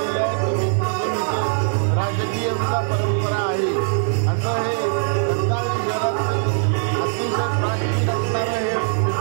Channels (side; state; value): left; silent; 58 dB below the other